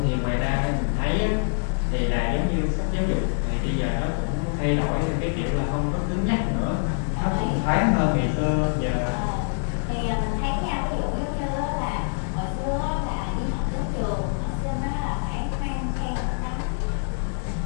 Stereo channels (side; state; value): right; silent; digital silence